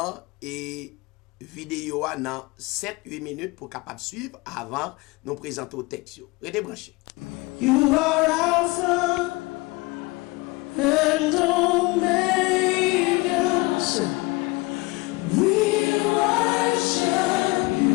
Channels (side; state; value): right; quieter; 23.6 dB